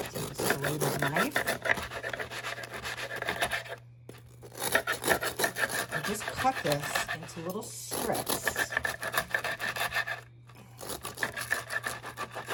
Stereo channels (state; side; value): identical; both; correlation 1.00